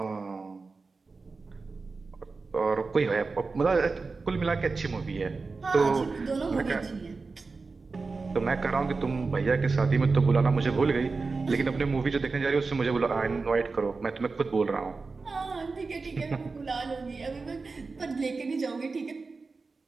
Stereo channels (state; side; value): quieter; left; 4.1 dB